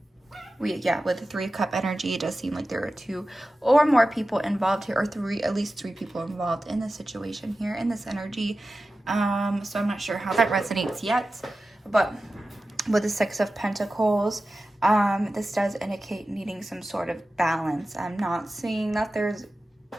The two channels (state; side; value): normal; both; correlation 0.94